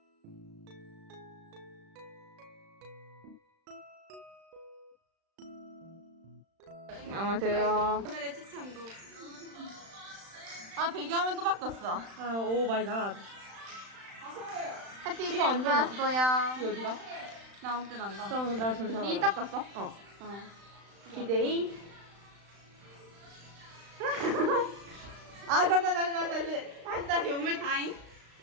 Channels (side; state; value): left; late; 35 ms